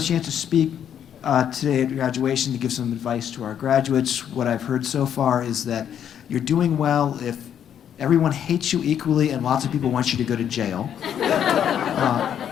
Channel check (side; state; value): right; quieter; 9.2 dB